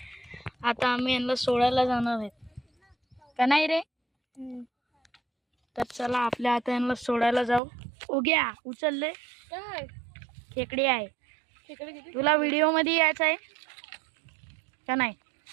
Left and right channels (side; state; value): left; drops out; at 7.6 s